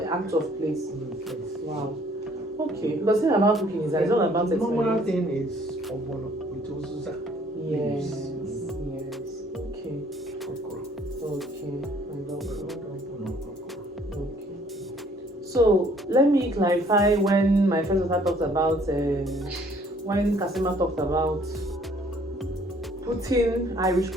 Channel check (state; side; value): normal; both; correlation 0.60